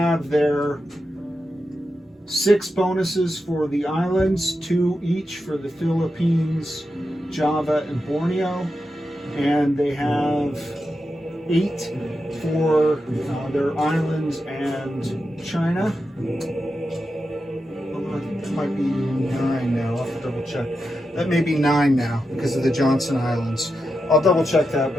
their 6 bonuses for the islands, 2 each for the Philippines, Java, and Borneo. And they have 8 for their islands and China. Although I think it might be 9 now. I'll have to double check. That may be 9 now because of the Johnson Islands. I'll double check that,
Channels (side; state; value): both; normal; correlation 0.88